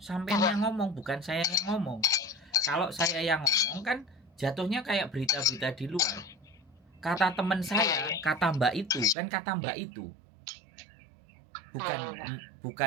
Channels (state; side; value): drops out; left; at 9.2 s